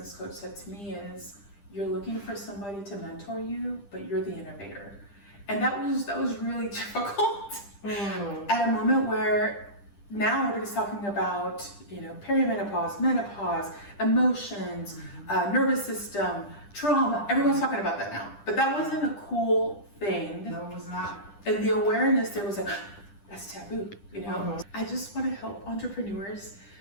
coach said to me is, you're looking for somebody to mentor you, but you're the innovator. And that was really difficult at a moment where now everybody's talking about, perimenopause, menopause, emotions, nervous system, trauma. Everyone's talking about that now. But that wasn't a cool thing. No, it was not. And the awareness there was like, that's taboo, I just want to help entrepreneurs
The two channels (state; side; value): late; right; 10 ms